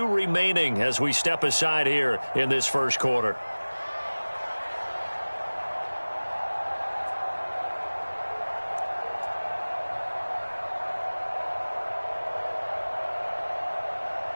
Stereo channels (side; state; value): both; inverted; correlation -1.00